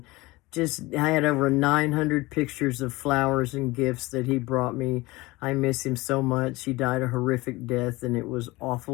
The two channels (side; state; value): right; quieter; 21.4 dB